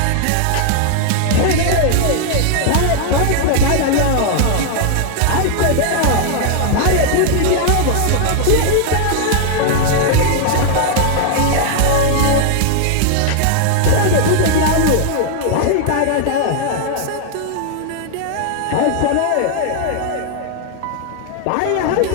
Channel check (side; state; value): both; different; correlation 0.00